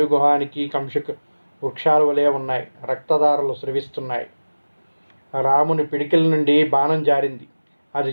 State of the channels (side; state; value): both; inverted; correlation -1.00